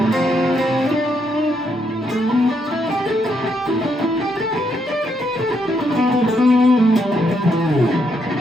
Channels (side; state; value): both; normal; correlation 0.76